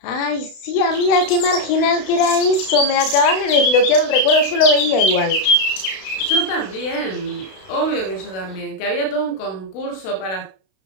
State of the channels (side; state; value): right; late; 33 ms